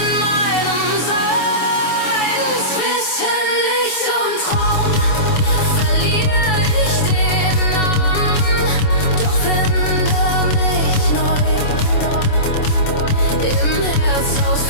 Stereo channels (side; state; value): right; late; 7.0 ms